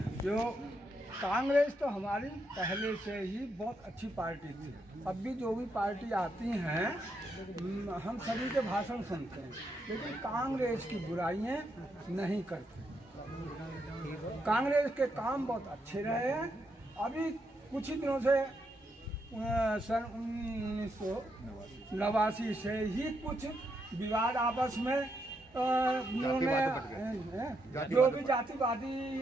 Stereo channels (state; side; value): normal; both; correlation 0.79